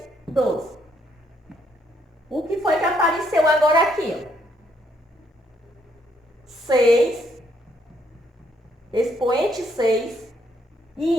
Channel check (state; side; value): normal; both; correlation 0.72